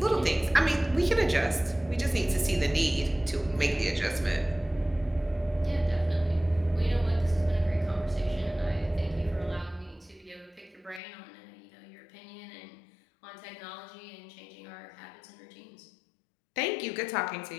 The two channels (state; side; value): drops out; right; at 11.0 s